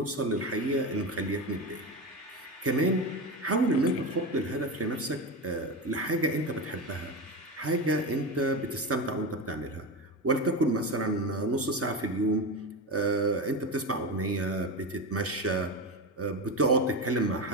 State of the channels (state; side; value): normal; both; correlation 0.20